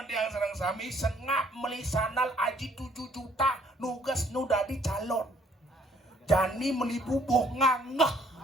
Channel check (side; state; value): both; normal; correlation 0.63